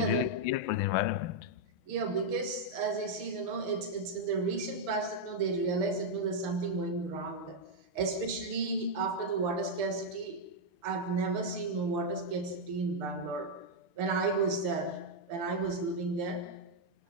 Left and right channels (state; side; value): late; left; 6.7 ms